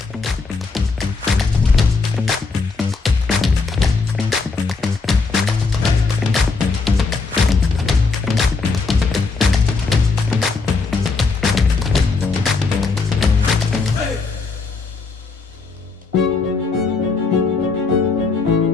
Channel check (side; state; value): right; quieter; 4.3 dB